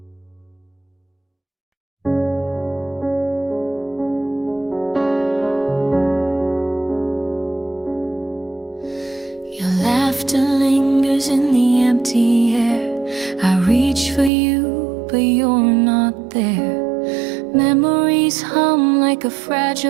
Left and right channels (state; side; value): drops out; left; at 14.3 s